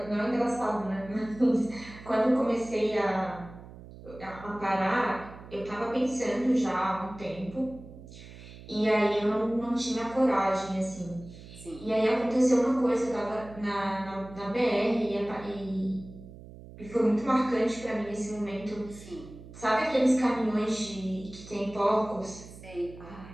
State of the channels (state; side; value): noise; right; hum, 17 dB below the sound